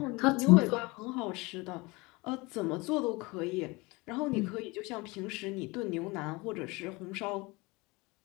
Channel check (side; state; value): right; quieter; 24.6 dB